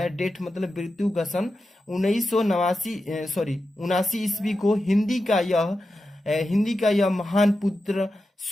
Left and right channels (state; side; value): normal; both; correlation 0.90